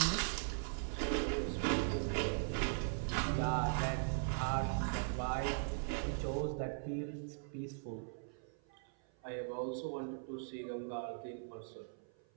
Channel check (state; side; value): silent; left; 51 dB below the other